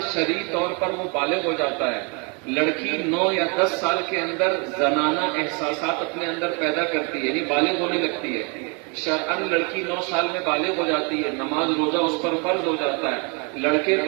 شرعی طور پر وہ بالغ ہو جاتا ہے. لڑکی 9 یا 10 سال کے اندر زنانہ احساسات اپنے اندر پیدا کرتی ہے، یعنی بالغ ہونے لگتی ہے. شرعاً لڑکی 9 سال میں بالغ ہو جاتی ہے، نماز روزہ اس پر فرض ہو جاتا ہے. لڑکے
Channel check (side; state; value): left; quieter; 33.6 dB